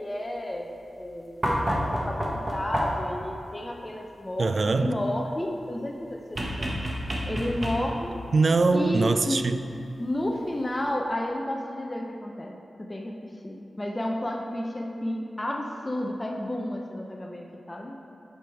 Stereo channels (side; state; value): both; normal; correlation 0.94